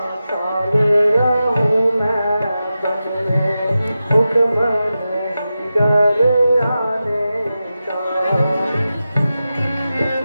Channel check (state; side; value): inverted; both; correlation -0.92